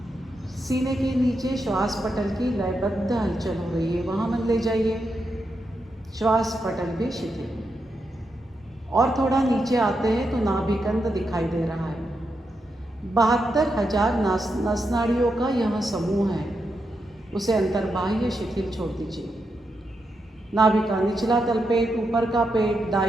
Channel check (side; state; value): both; normal; correlation 0.85